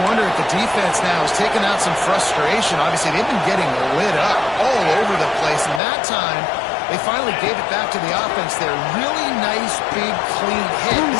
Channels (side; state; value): right; drops out; at 5.8 s